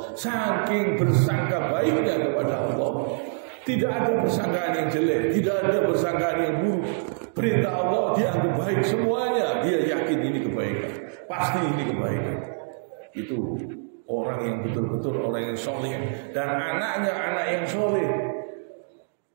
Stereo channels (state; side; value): silent; left; digital silence